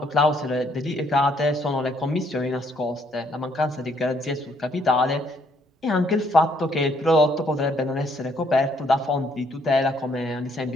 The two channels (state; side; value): normal; both; correlation 0.68